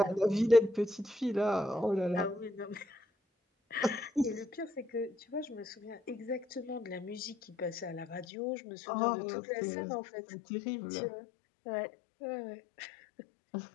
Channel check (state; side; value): drops out; right; at 8.2 s